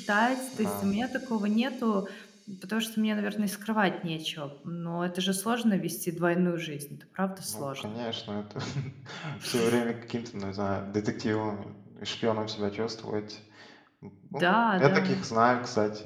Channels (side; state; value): both; identical; correlation 1.00